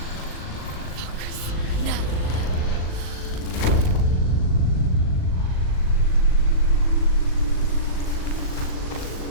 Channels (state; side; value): late; right; 39 ms